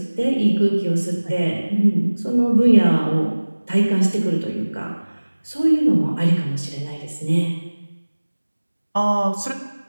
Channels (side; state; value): both; inverted; correlation -1.00